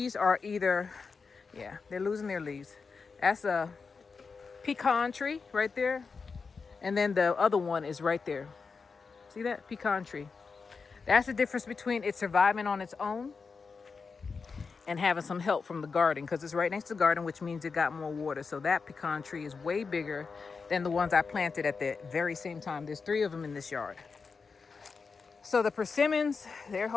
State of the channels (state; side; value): quieter; right; 5.0 dB